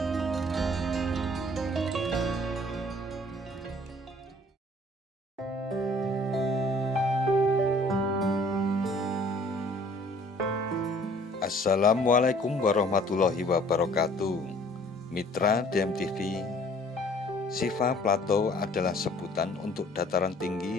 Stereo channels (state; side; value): normal; both; correlation 0.55